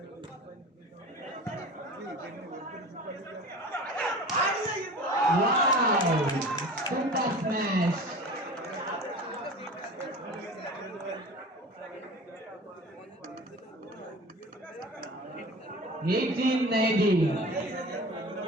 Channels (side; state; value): both; normal; correlation 0.38